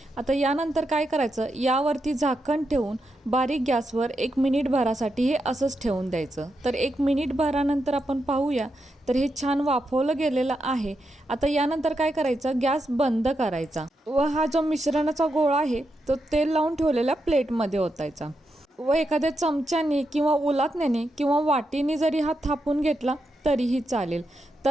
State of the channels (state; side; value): normal; both; correlation 0.85